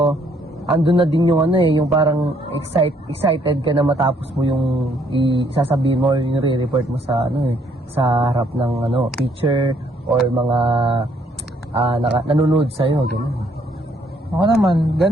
andun na din yung yung parang excited ka na matapos mo yung isasabihin mo or yung re-report mo sa sa harap ng teacher or mga nanonood sa'yo, gano'n. Ako naman,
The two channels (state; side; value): normal; both; correlation 0.67